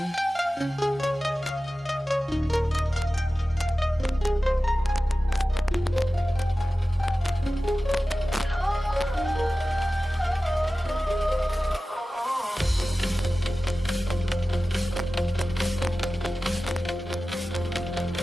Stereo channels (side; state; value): both; normal; correlation 0.95